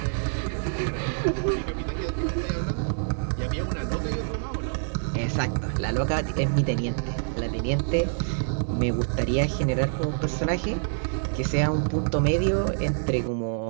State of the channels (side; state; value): left; silent; digital silence